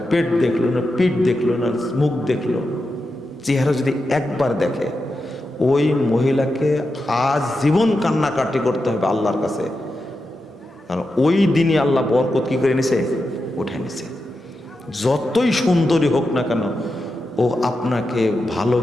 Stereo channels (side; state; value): both; normal; correlation 0.89